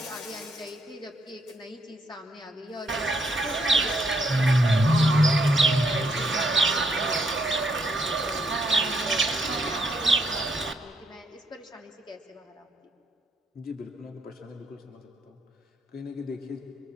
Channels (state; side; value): normal; both; correlation 0.74